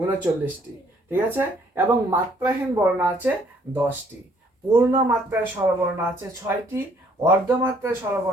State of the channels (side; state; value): both; normal; correlation 0.63